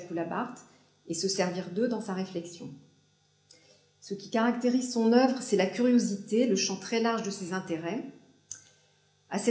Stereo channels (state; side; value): identical; both; correlation 1.00